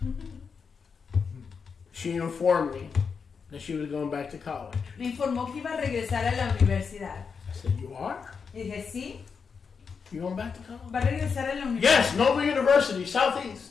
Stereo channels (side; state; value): right; quieter; 5.8 dB